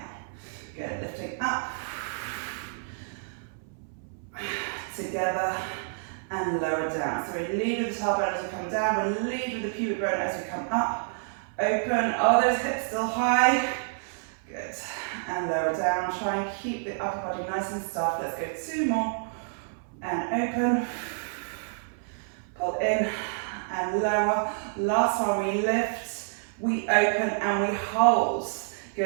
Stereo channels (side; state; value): left; silent; 59 dB below the other